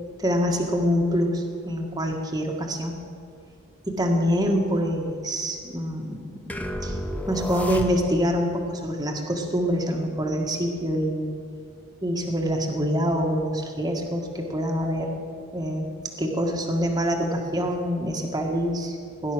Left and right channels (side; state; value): both; normal; correlation 0.68